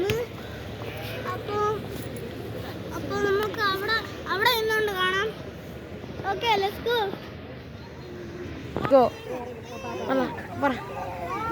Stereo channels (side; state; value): both; identical; correlation 1.00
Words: അപ്പോൾ നമുക്ക് അവിടെ നിന്നുകൊണ്ട് കാണാം. Okay, let's go. പറ